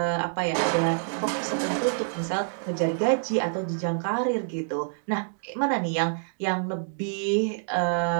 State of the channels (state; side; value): silent; left; digital silence